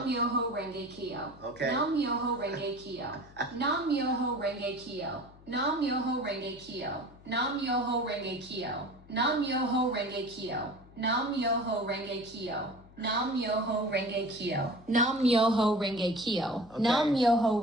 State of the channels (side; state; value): left; noise; hum, 23 dB below the sound